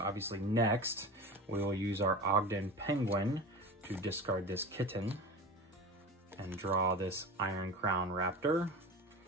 obviously next, we will use our Ogden Penguin to discard this kitten and draw this Iron Crown Raptor.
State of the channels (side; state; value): both; normal; correlation 0.30